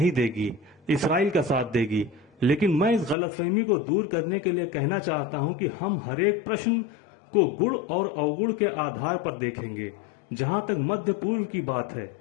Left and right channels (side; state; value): right; drops out; at 3.2 s